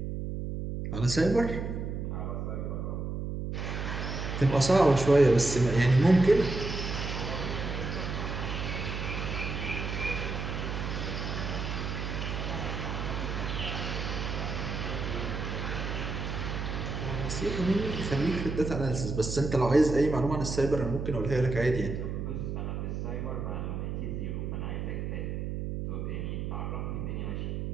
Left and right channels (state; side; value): noise; right; hum, 3 dB below the sound